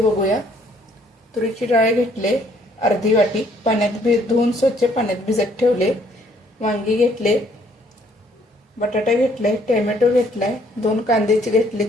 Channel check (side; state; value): both; normal; correlation 0.64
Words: तुरीची डाळ घेतले अर्धी वाटी, पाण्यात धुवून स्वच्छ पाण्यात भिजत ठेवले. वांगी घेतले, बटाटा घेतलाय, टोमॅटो घेतलाय, 2 कांदे घेतले